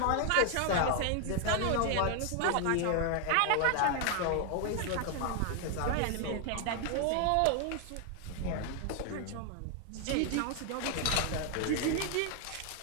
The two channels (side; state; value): both; different; correlation 0.00